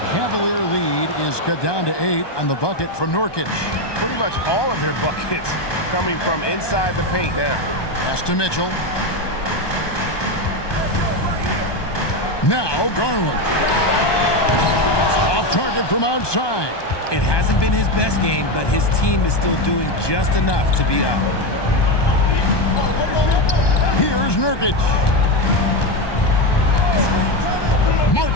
Cavalier lead is cut down to 8 on the bucket from Nurkic. Pretty much all of their buckets coming from inside the paint now. Pass to Mitchell. Now Garland. Off target from outside. It hasn't been his best game, but his team is still doing just enough to be up. Here's Nurkic.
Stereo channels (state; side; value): late; right; 1.2 ms